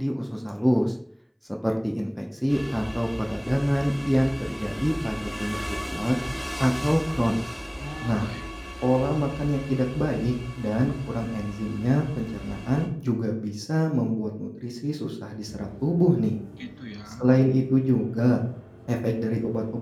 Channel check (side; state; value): both; identical; correlation 1.00